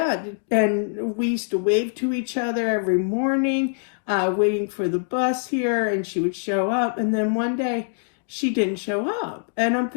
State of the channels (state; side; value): silent; right; digital silence